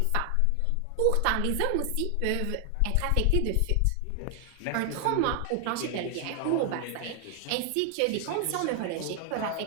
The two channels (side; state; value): both; different; correlation 0.00